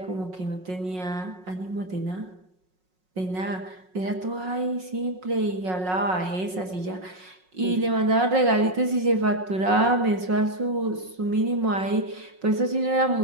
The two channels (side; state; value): left; late; 5.5 ms